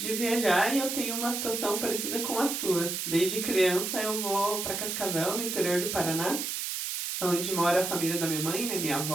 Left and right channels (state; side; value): noise; right; hiss, 3 dB below the sound